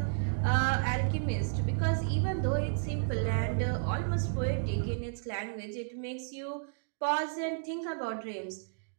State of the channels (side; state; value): left; silent; digital silence